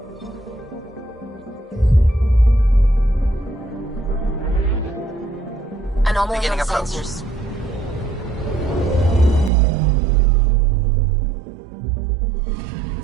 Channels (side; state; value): left; drops out; at 9.5 s